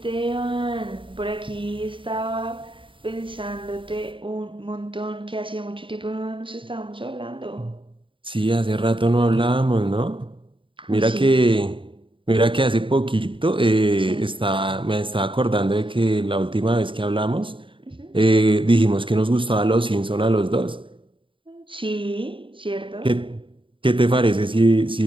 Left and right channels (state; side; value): late; left; 0.25 ms